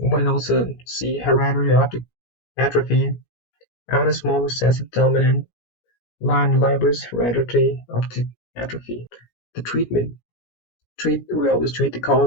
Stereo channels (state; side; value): late; right; 17 ms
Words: might also see hereditary optic atrophy, autosomal recessive dominant, line libris hereditary optic atrophy. The treatment. We always treat the